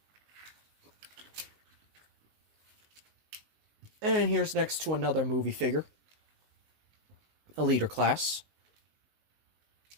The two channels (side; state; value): left; late; 19 ms